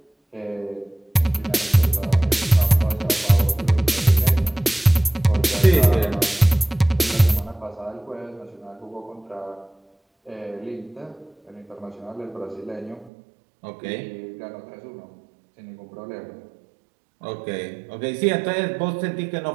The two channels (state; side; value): drops out; left; at 13.1 s